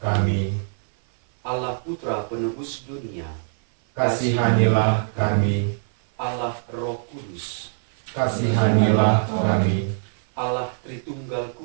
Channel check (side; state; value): left; silent; 57 dB below the other